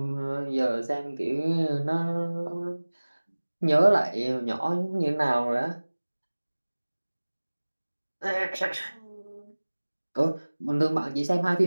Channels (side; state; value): both; inverted; correlation -1.00